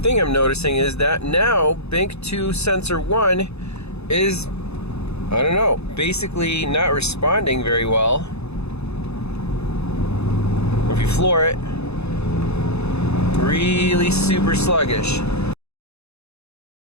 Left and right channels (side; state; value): right; late; 0.80 ms